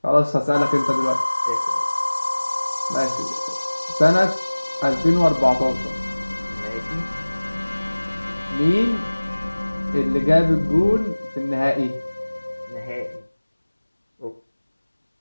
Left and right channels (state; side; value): inverted; both; correlation -1.00